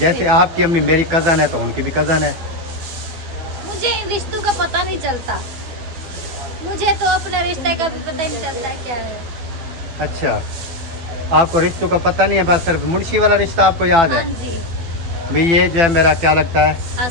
आपकी अम्मी मेरी कज़न है, तो उनकी भी कज़न है। मुझे इन रिश्तों का पता नहीं चलता, मुझे तो अपने रिश्ते का भी पता नहीं चलता है क्या है। अच्छा, आपको रिश्तों का पता नहीं है, बस सिर्फ मुंशी वाला रिश्ता आपको याद है? हाँ जी। भाई ये जो है मेरा क्या लगता है,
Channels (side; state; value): left; late; 12 ms